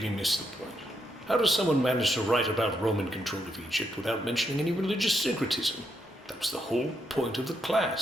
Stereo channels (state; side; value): normal; both; correlation 0.79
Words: missed the point. How does someone manage to write about Roman control of Egypt without mentioning any religious syncretism? That was the whole point of the